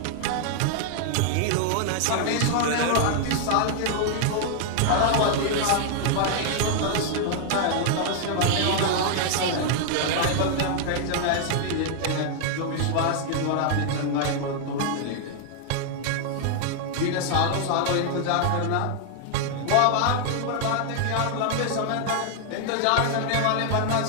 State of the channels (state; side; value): different; both; correlation 0.00